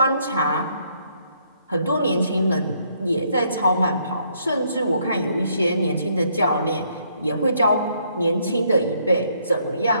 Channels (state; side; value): inverted; both; correlation -0.70